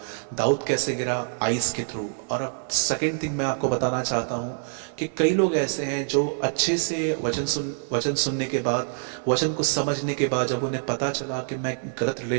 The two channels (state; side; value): silent; left; digital silence